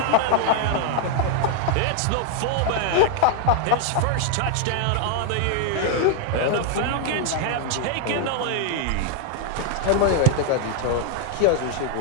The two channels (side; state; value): both; different; correlation 0.00